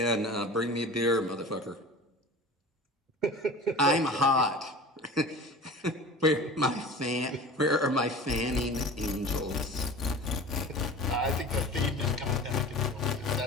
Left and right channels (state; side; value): normal; both; correlation 0.38